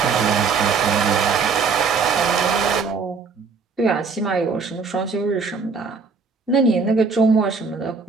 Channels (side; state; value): left; quieter; 5.0 dB